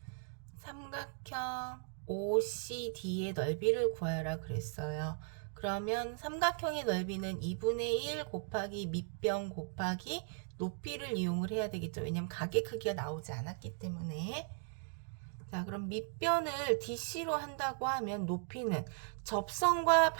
삼각형 OCD의 넓이를 구하라 그랬어요. 그러면 삼각형의 넓이는 2분의 1 곱하기 밑변 곱하기 높이를 이용을 해야 되겠죠. 왜냐면 각의 크기가 나오지 않았기 때문에. 자, 그럼 밑변을 DC로 한다고 하면 높이는 접선과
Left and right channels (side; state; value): left; silent; 53 dB below the other